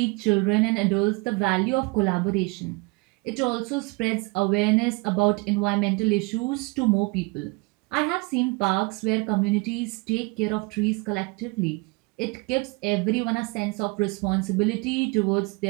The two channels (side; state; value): left; quieter; 27.7 dB